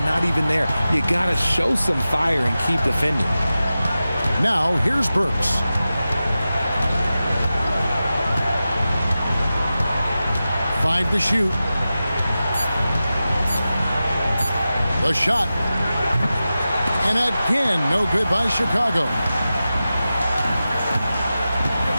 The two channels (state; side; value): inverted; both; correlation -0.94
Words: even there. You got to show some fire and keep defending. Now, here's Burks. Five to shoot. The shot. And again, no good by Chicago.